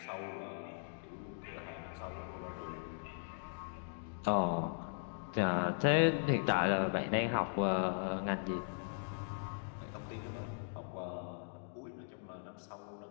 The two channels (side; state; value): right; silent; digital silence